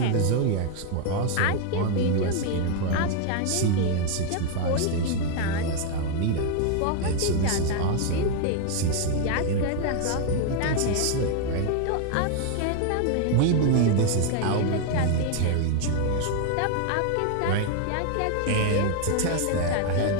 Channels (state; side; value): different; both; correlation 0.01